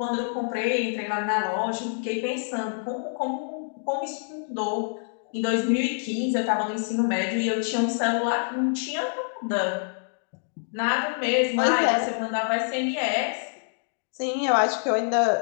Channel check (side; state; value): right; silent; digital silence